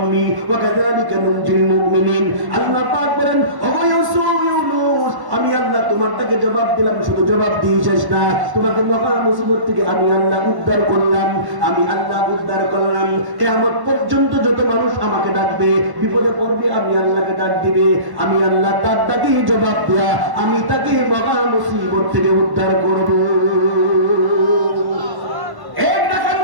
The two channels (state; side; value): late; left; 1.1 ms